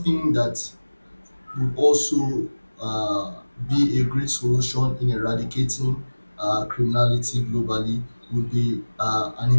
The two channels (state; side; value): inverted; both; correlation -1.00